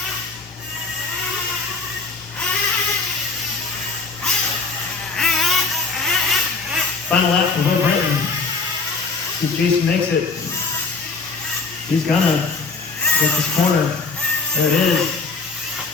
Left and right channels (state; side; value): quieter; right; 4.1 dB